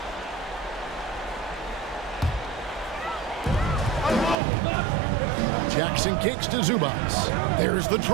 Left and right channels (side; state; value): left; drops out; at 4.4 s